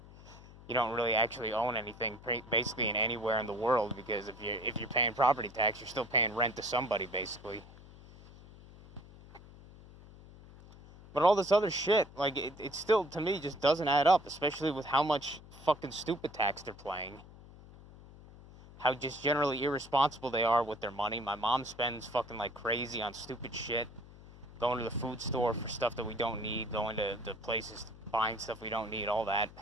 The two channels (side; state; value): left; noise; hum, 19 dB below the sound